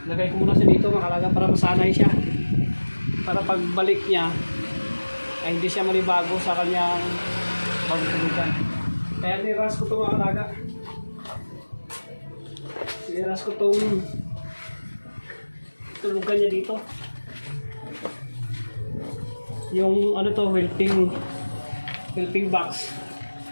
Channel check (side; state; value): both; inverted; correlation -1.00